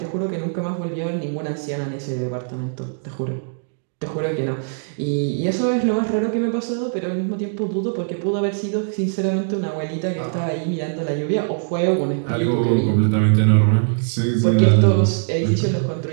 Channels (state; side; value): silent; left; digital silence